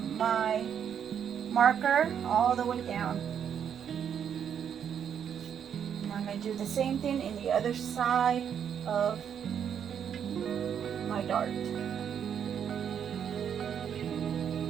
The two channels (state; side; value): quieter; left; 8.3 dB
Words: my marker all the way down. And I'm going to do the same thing in the other side of my dart.